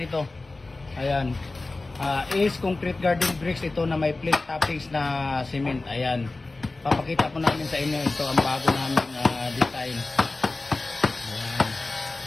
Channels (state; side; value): quieter; right; 3.3 dB